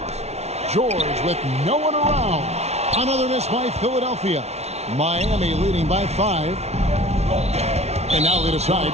George with no one around. Another miss by Philadelphia. Miami leading by 5. And now they decide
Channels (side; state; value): left; late; 0.31 ms